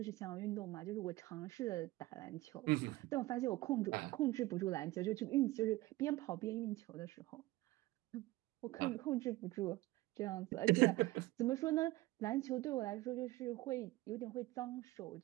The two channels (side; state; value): left; quieter; 18.7 dB